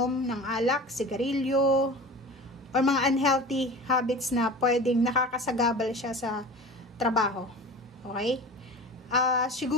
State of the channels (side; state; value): both; normal; correlation 0.36